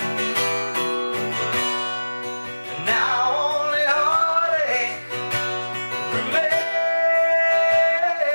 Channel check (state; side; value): inverted; both; correlation -1.00